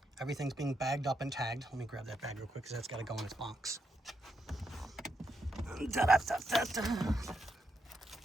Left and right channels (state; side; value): normal; both; correlation 0.81